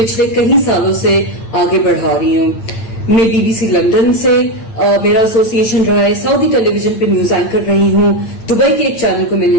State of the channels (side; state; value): right; late; 8.9 ms